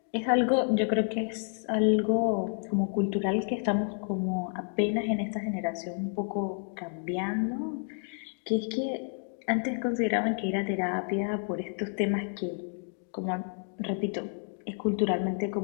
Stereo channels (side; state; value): right; silent; 58 dB below the other